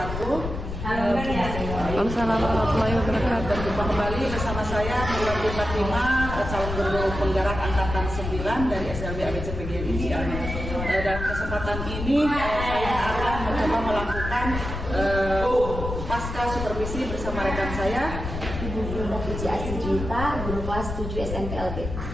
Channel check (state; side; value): noise; left; rumble, 6 dB below the sound